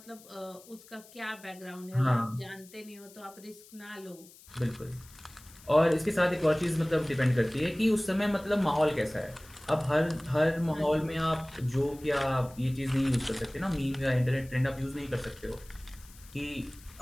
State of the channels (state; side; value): noise; left; hiss, 22 dB below the sound